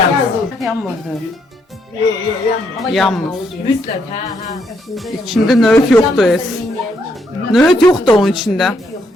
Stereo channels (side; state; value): both; normal; correlation 0.74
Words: Yanmır. İçinde nöğüt yoktu es. Nöğüt yoktu onun içinde.